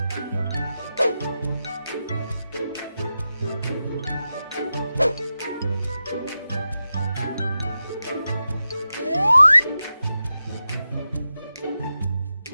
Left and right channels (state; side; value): inverted; both; correlation -0.91